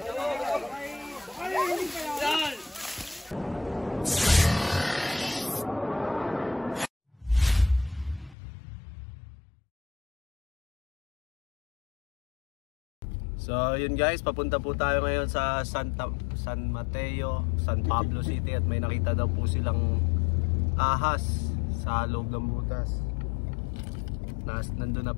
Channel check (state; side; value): drops out; right; at 8.3 s